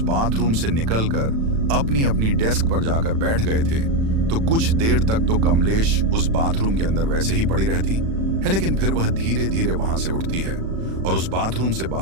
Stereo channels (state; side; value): late; left; 36 ms